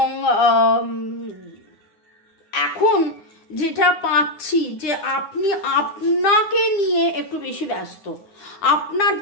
এখন যেটা পাচ্ছি যে আপনি আপনাকে নিয়ে একটু বেশি ব্যস্ত। আপনার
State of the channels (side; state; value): right; late; 9.7 ms